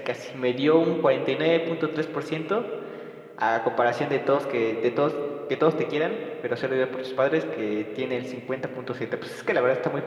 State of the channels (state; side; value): identical; both; correlation 1.00